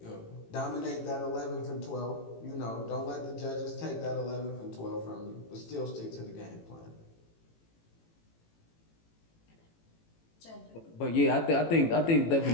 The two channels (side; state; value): right; late; 18 ms